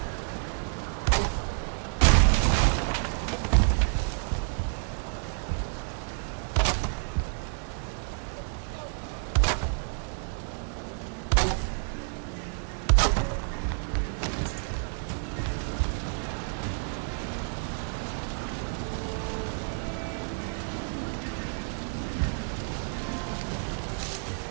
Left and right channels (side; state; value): left; silent; 58 dB below the other